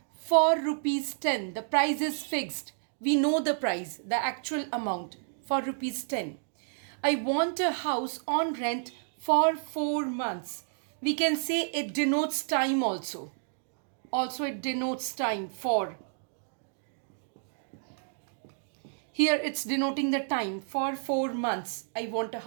for rupees 10. The price is fixed. We know the price, the actual amount, for rupees 10. I want a house on rent for 4 months. We can say it denotes time also. Also it denotes time for. Here it's denoting the time for 4 months. I want a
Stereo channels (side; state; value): left; silent; digital silence